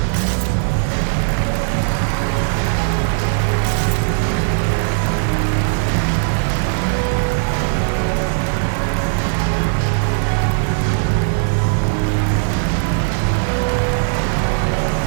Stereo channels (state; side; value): silent; left; digital silence